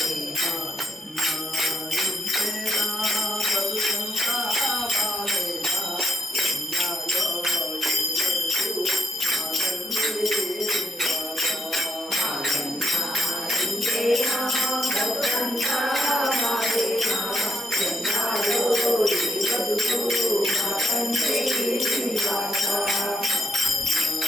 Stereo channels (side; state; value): both; normal; correlation 0.78